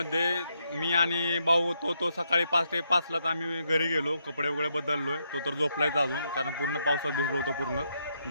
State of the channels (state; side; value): inverted; both; correlation -0.79